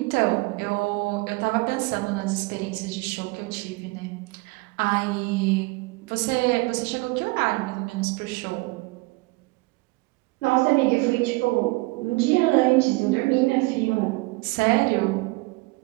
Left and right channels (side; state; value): left; quieter; 24.3 dB